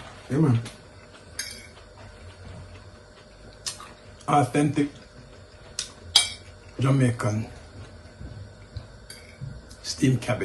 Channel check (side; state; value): both; identical; correlation 1.00